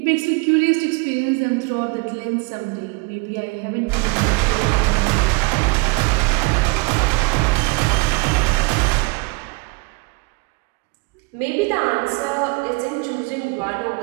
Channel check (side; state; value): left; quieter; 27.6 dB